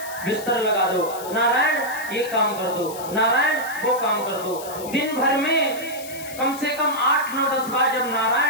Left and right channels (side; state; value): left; noise; hiss, 14 dB below the sound